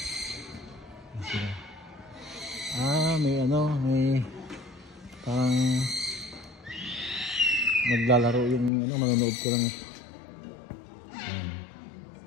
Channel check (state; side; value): drops out; right; at 8.7 s